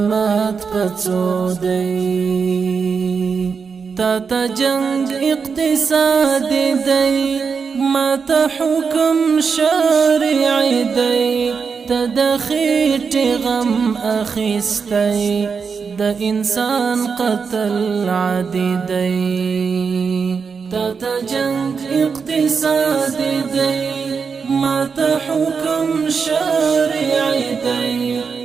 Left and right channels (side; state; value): left; quieter; 5.6 dB